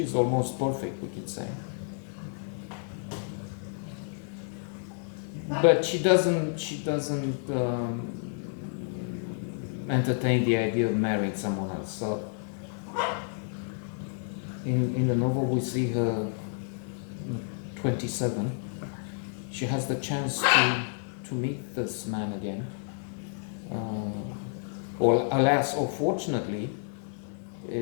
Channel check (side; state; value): right; silent; 58 dB below the other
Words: is almost perfect, we could say. But she doesn't entertain the idea of marrying someone else. So in the novel we see her 27. She has the chance to meet this man again. Or alas, or fortunately,